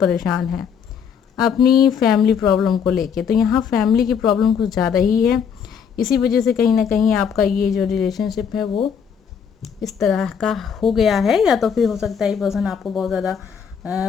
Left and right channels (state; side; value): quieter; right; 7.2 dB